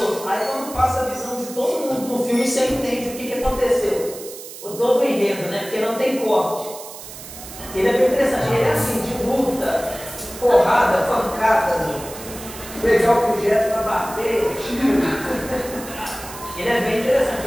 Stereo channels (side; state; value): right; noise; hiss, 13 dB below the sound